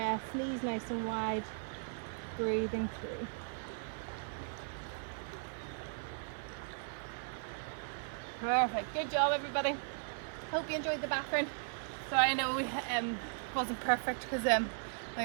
Knees nice and wide. Breathing through. Perfect. Good job, everybody. Hope you enjoyed the background. So I know we wasn't perfect because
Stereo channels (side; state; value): left; silent; 53 dB below the other